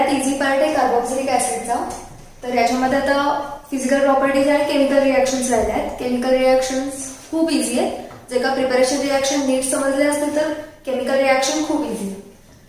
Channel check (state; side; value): identical; both; correlation 1.00